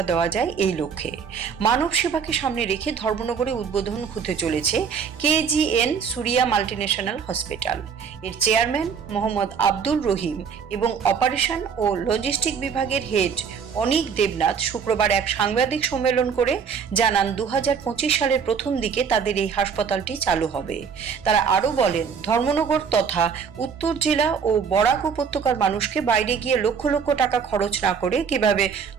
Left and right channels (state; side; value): quieter; left; 6.5 dB